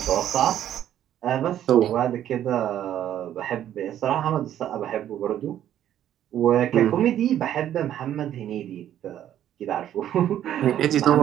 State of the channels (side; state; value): left; quieter; 11.2 dB